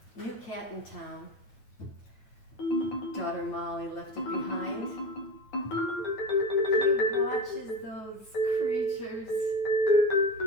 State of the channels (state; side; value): late; right; 9.3 ms